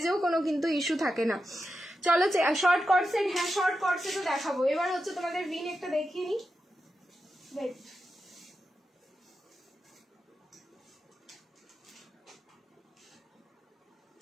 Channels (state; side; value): normal; both; correlation 0.89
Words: কোনো কিন্তু ইস্যু থাকে না। চলো শর্ট কট সেট, হ্যাঁ শর্ট কট সেটও দেখাবো। এবার হচ্ছে তোমাদের ভিন একটা দেখিয়ে নি, ওয়েট।